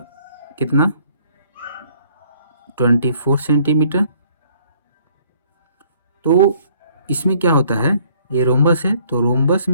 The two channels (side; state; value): both; inverted; correlation -0.61